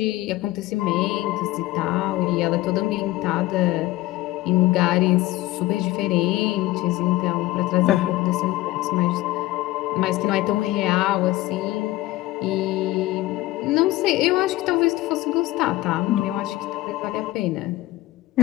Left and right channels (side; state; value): right; quieter; 17.4 dB